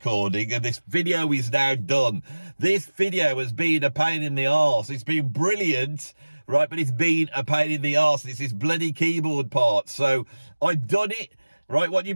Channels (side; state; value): both; inverted; correlation -1.00